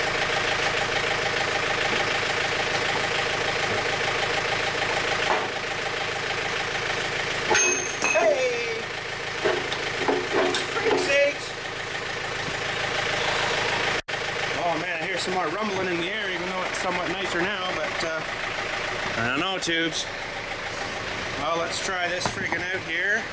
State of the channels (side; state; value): both; identical; correlation 1.00